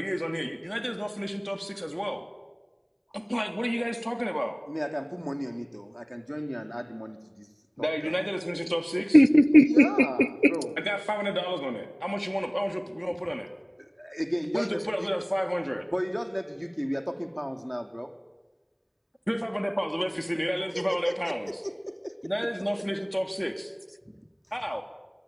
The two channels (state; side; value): identical; both; correlation 1.00